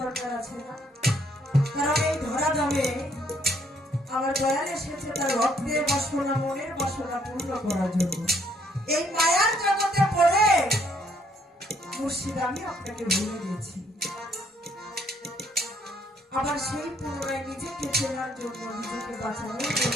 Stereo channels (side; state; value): both; normal; correlation 0.67